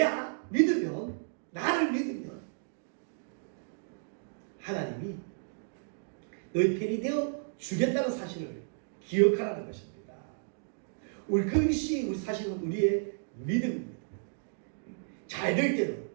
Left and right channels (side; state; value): left; silent; digital silence